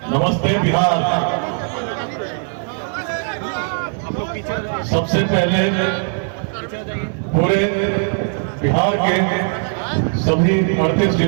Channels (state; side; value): silent; left; 55 dB below the other